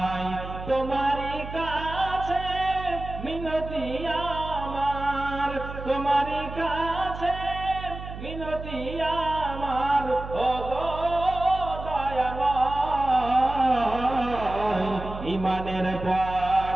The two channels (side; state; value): right; noise; hum, 10 dB below the sound